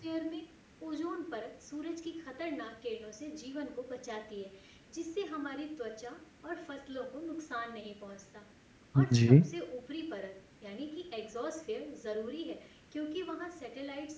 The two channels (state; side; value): identical; both; correlation 1.00